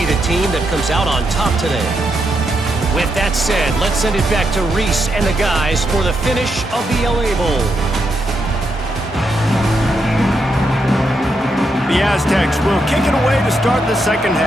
the team that comes out on top today. With that said, let's send it back to Reese and the guys for the finish of the LA Bowl. The Aztecs will kick it away to start the second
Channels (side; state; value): both; normal; correlation 0.81